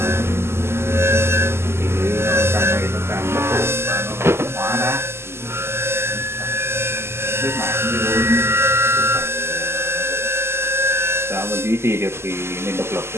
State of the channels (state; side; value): late; left; 0.12 ms